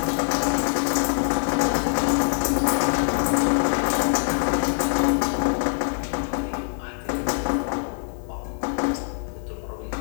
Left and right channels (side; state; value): right; silent; digital silence